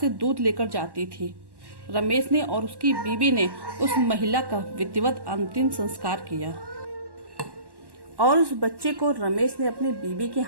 दूध लेकर जाती थी। रमेश ने और उसकी बीवी ने उस महिला का विधिवत अंतिम संस्कार किया और उस बच्चे को रमेश ने अपनी बीवी के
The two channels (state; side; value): late; left; 1.1 ms